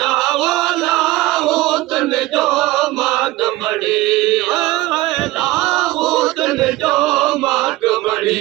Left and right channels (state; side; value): quieter; left; 18.4 dB